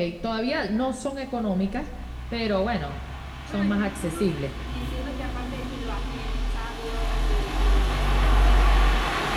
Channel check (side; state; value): both; identical; correlation 1.00